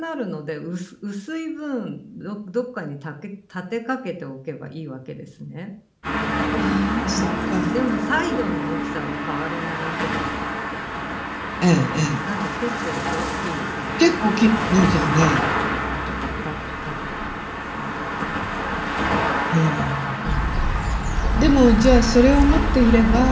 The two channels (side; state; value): both; identical; correlation 1.00